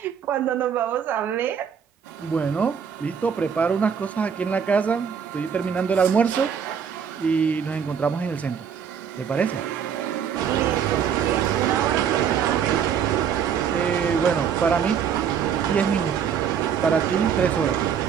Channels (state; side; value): quieter; left; 7.6 dB